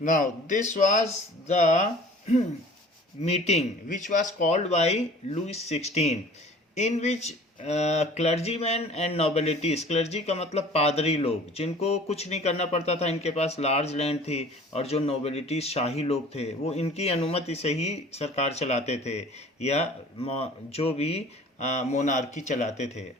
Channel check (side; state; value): both; normal; correlation 0.47